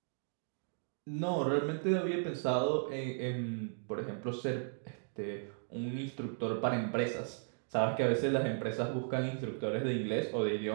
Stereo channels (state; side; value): silent; left; digital silence